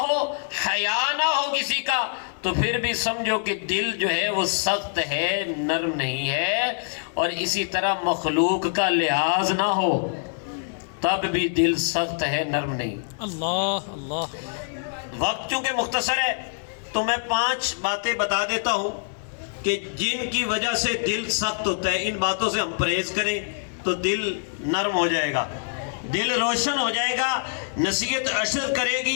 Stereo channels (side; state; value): right; silent; digital silence